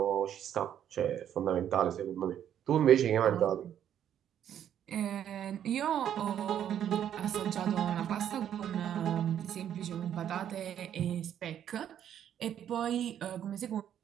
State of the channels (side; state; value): left; quieter; 9.9 dB